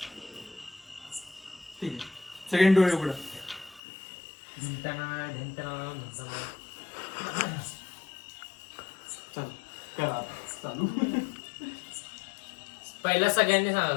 ठीक आहे. सेकंड डोळे उघडा. चालू करा चालू. पहिला सगळ्यांनी सांगा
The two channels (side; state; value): right; drops out; at 3.8 s